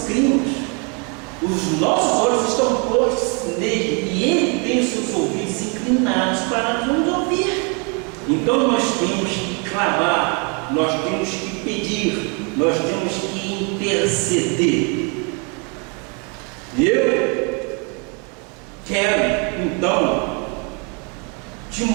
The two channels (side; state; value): left; quieter; 34.7 dB